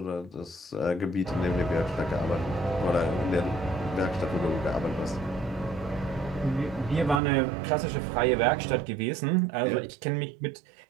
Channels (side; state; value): left; drops out; at 7.2 s